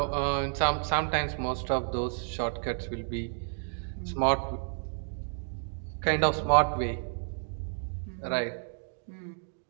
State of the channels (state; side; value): silent; left; digital silence